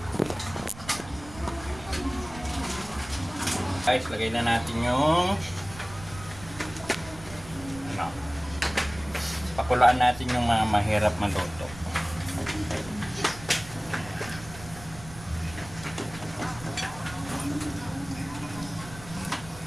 Guys, lagay na natin yung ano, pakulaan natin yung mga mahirap maluto.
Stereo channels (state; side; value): noise; right; rumble, 16 dB below the sound